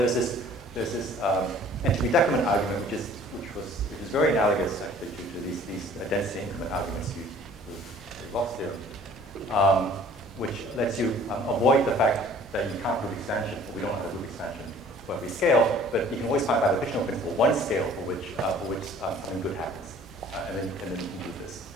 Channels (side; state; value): left; noise; rumble, 26 dB below the sound